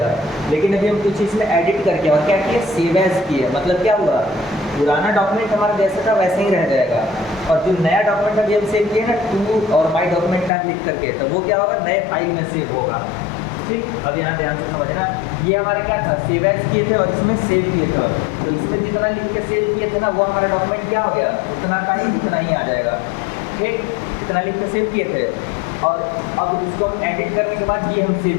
लेकिन अभी हम कुछ इसमें एडिट करके और क्या किए, सेव एज किए। मतलब क्या हुआ, पुराना डॉक्यूमेंट हमारा जैसा था वैसे ही रह जाएगा, और जो नया डॉक्यूमेंट अभी हम सेव किए ना, टू और माई डॉक्यूमेंट का लिख करके, तो वो क्या होगा, नए फाइल में सेव होगा। ठीक, अब यहाँ ध्यान से समझना, ये हमारे क्या था, सेव एज किए थे और इसमें सेव किए थे। तो इसमें जितना लिख के सेव किए थे ना, वो हमारा डॉक्यूमेंट क्या हो गया, उतना का ही उतना ही आ जाएगा। ठीक, इतना लिख के सेव किए थे, और अब इसको हम एडिट करने के बाद ये हम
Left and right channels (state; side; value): drops out; right; at 10.5 s